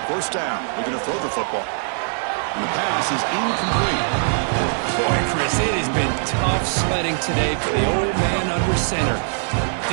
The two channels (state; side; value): silent; left; digital silence